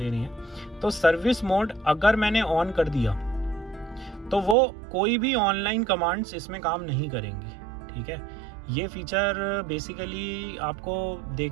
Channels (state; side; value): drops out; left; at 4.5 s